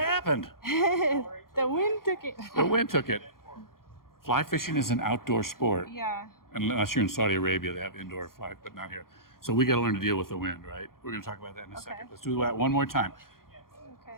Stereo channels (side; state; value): right; late; 0.92 ms